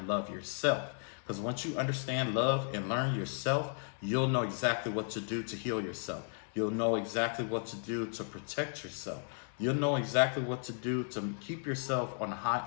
love yourself. Because once you understand, love, and learn yourself, you'll know exactly what to do to heal yourself. You'll know exactly what to do to protect yourself. You'll know exactly what to do to keep yourself on a high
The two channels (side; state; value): right; silent; 55 dB below the other